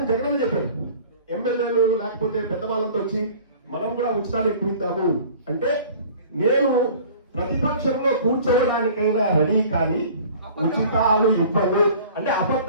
జగన్ చెప్పాడు, ఎమ్మెల్యేలు లేకపోతే పెద్దవాళ్ళతో వచ్చి మనం కూడా ఉచితాలు ఎక్కువ అంటే, నేను ప్రతిపక్షంలో కూర్చోవడానికైనా రెడీ, కానీ ఉచితాలు ఇవ్వను అంటే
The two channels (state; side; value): inverted; both; correlation -0.46